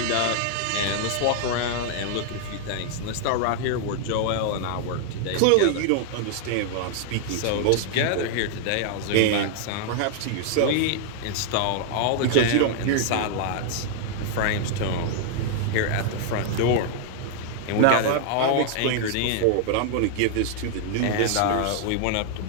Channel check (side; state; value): both; different; correlation 0.00